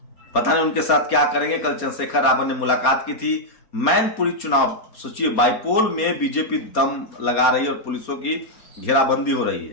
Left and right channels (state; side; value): late; right; 4.3 ms